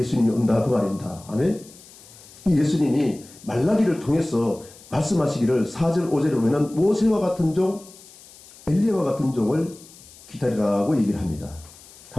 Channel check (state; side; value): noise; left; hiss, 22 dB below the sound